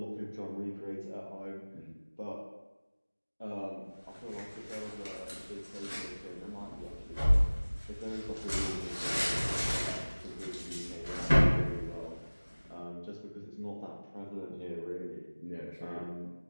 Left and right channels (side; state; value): both; inverted; correlation -1.00